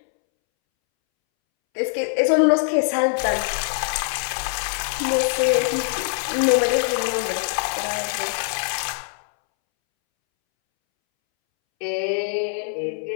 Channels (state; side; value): silent; right; 64 dB below the other